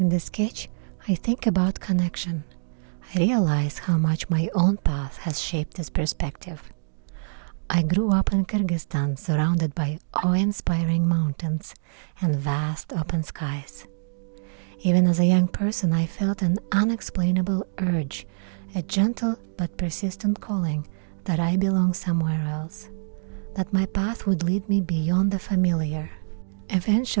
the sketch, I think about connection. I realize how much my own path has shaped this perspective. I grew up in Kyrgyzstan, surrounded by awe-inspiring mountains and vast open skies. Even as a young person, I felt an unexplainable urge, a gentle but persistent calling that I belong somewhere else, that my path would lead me beyond the familiar.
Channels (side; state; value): left; silent; digital silence